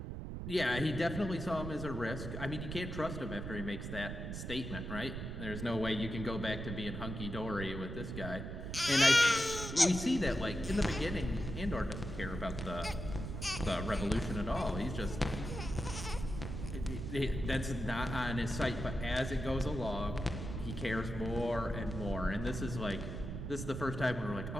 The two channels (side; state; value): right; noise; rumble, 6 dB below the sound